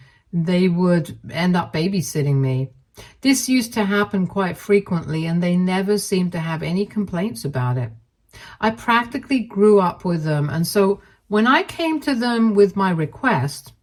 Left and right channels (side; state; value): both; identical; correlation 1.00